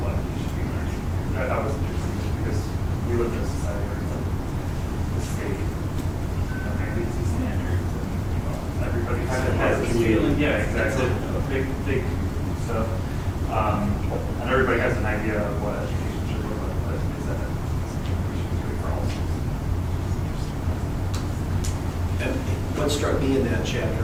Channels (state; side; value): identical; both; correlation 1.00